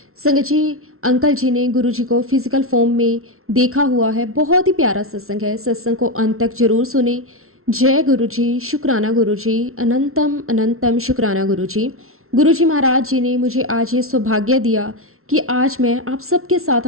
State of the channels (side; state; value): left; late; 0.62 ms